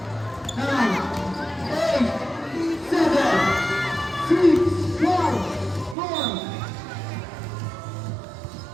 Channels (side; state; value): left; drops out; at 6.0 s